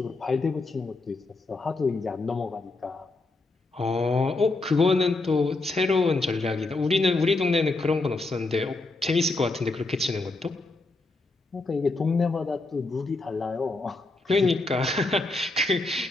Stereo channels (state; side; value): quieter; right; 3.3 dB